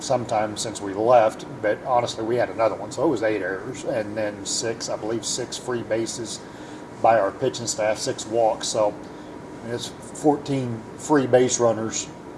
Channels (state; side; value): identical; both; correlation 1.00